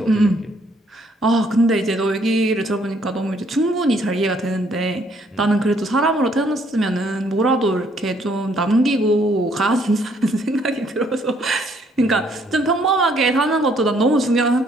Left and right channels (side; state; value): both; normal; correlation 0.66